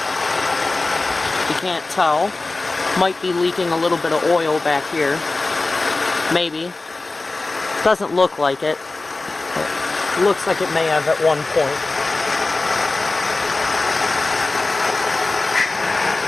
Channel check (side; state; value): right; quieter; 3.3 dB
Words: can't tell. Might be leaking a little bit of oil back here. Maybe. Doesn't look like it. It looks like it may have at one point.